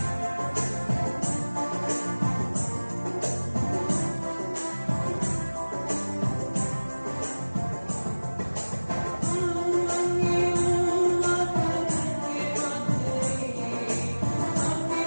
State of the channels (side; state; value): both; inverted; correlation -1.00